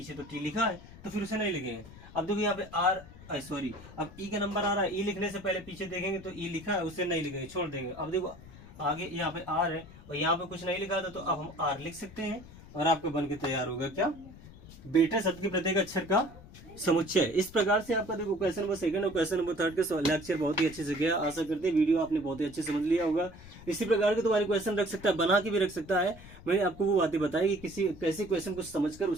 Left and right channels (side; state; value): left; noise; rumble, 18 dB below the sound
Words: तो टी लिखा है तो फिर उसे नहीं लिखेंगे। अब देखो यहाँ पे आर सॉरी अब ई का नंबर आ रहा है, ई लिखने से पहले पीछे देखेंगे तो ई लिखा है उसे नहीं लिखेंगे, छोड़ देंगे। अब देखो आगे यहाँ पे आर है और यहाँ पे कुछ नहीं लिखा था तो अब हम आर लिख सकते हैं और आपका बन के तैयार होगा क्या, बेटा शब्द के प्रत्येक अक्षर का समुच्चय। इस प्रकार से आपका देखो क्वेश्चन नंबर 2 और क्वेश्चन नंबर 3 का लेक्चर बहुत ही अच्छे से गया। आशा करते हैं वीडियो आपने बहुत ही अच्छे समझ लिया होगा। इसी प्रकार के तुम्हारे क्वेश्चन रख सकता है, बना के भी रख सकता है। मैंने आपको वो बातें बताई कि किसी कैसे क्वेश्चन को समझकर